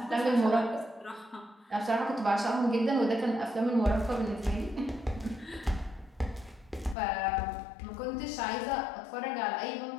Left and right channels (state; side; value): drops out; right; at 7.0 s